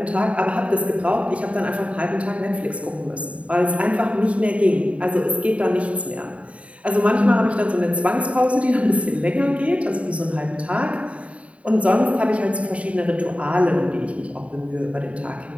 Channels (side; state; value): left; late; 0.065 ms